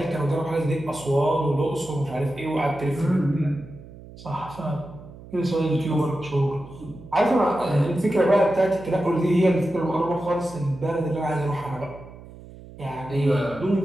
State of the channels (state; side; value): noise; right; hum, 18 dB below the sound